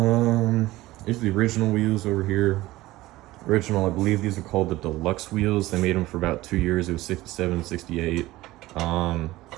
Here's the original wheels over here. Original, I believe these are called the deluxe wheels. They made them for about 2 years. It was 67, 68.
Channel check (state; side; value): quieter; left; 17.8 dB